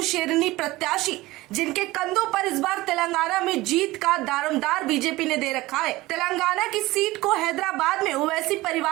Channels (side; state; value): left; quieter; 19.1 dB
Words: शेरनी प्रत्याशी जिनके कंधों पर इस बार तेलंगाना में जीत का दारोमदार बीजेपी ने दे रखा है। तेलंगाना की सीट को हैदराबाद में ओवैसी